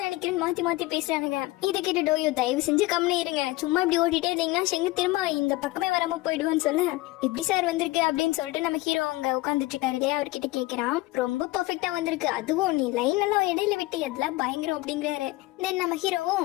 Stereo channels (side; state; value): right; quieter; 19.8 dB